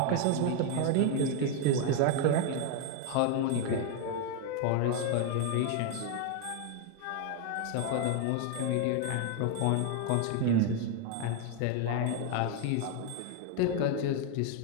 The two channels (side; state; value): both; different; correlation 0.01